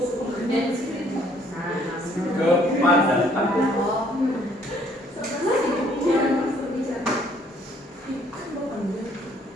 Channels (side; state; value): both; normal; correlation 0.62